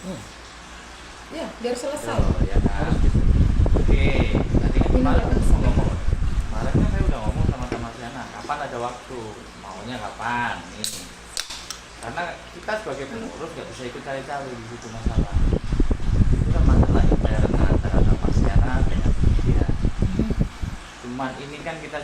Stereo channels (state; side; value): identical; both; correlation 1.00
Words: Ya, biar selesai. Oh, ya kan? Oke, tadi kan kemarin ngomong. Kemarin kan saya udah ngomong sama Siana, kapan ada waktu, maunya kapan nih. Karena kita sebagai pengurus nggak bisa ikut cari-cari di situ masalah. Itu kan masalah intern antara Siana dengan dia. Cuman ini kan kita